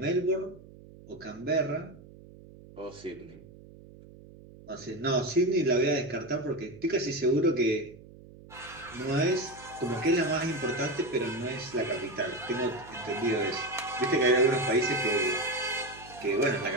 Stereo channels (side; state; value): right; noise; hum, 20 dB below the sound